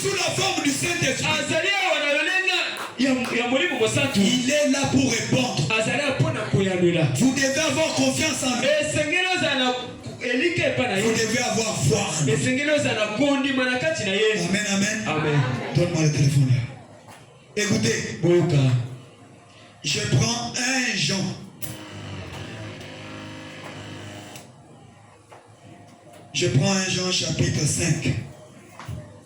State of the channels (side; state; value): both; identical; correlation 1.00